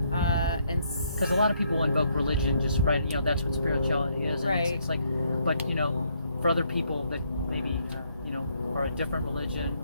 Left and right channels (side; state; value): both; inverted; correlation -0.71